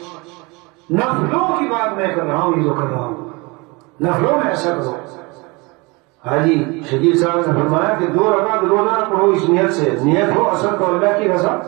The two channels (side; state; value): left; quieter; 26.3 dB